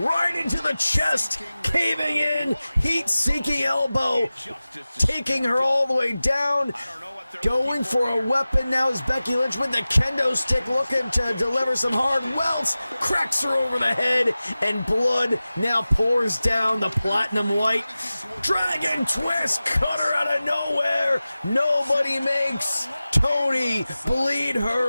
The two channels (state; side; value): inverted; both; correlation -0.96